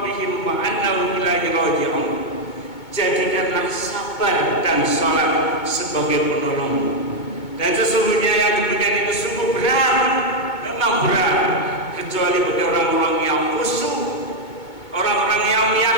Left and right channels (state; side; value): late; right; 2.2 ms